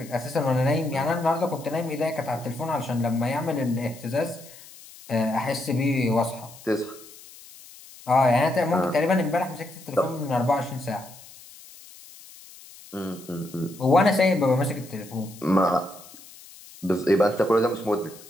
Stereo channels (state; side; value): noise; left; hiss, 20 dB below the sound